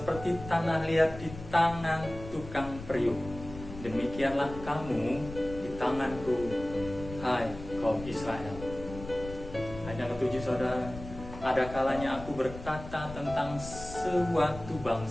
tanah liat di tangan tukang priuk, demikianlah kamu di tanganku, hai kaum Israel." Ayat yang ketujuh saudara, "Ada kalanya aku berkata tentang suatu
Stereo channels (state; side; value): noise; left; rumble, 13 dB below the sound